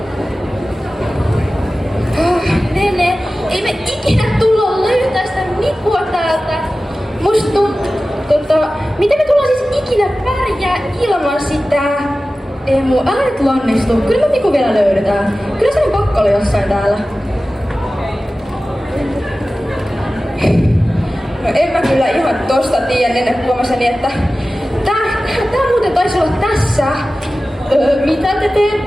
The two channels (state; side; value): normal; both; correlation 0.95